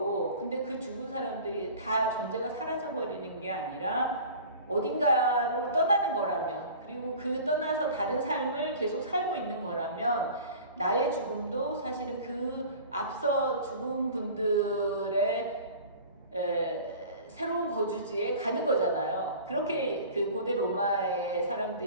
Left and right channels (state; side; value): inverted; both; correlation -0.41